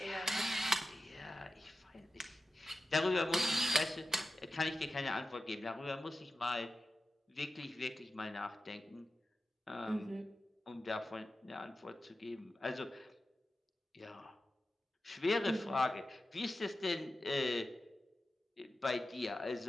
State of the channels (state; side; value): normal; both; correlation 0.93